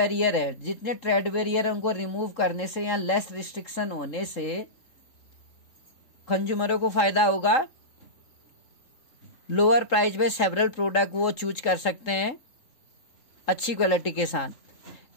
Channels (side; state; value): right; late; 3.8 ms